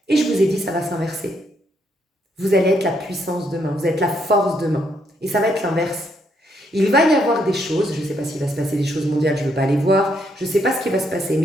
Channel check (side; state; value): both; normal; correlation 0.74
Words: Et je vous ai dit, ça va s'inverser. Vous allez être la puissance demain, vous êtes la force demain. Et ça va être l'inverse. Il va y avoir des choses, je ne sais pas s'il va se passer des choses mondiales, je ne veux pas aller voir, je ne sais pas ce qui va se passer,